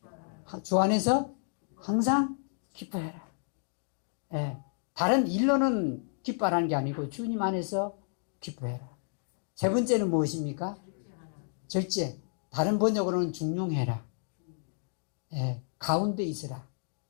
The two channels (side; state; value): right; silent; digital silence